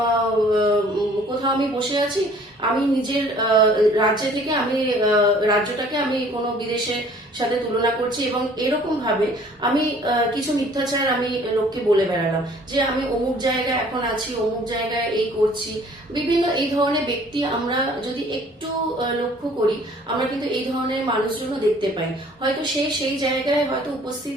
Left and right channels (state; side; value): normal; both; correlation 0.54